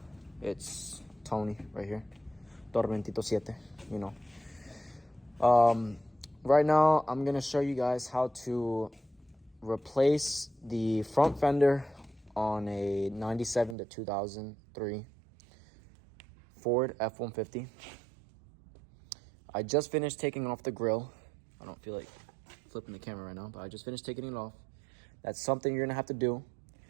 It's Tony right here. Tormentito 7, you know. Right now, I'm going to show you guys how to replace the front fender on a 97 to 2003 Ford F-150. I just finished taking off the grill. I don't feel like flipping the camera right now, but I just finished taking it off. That's something you're going to have to do.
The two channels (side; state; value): left; drops out; at 13.8 s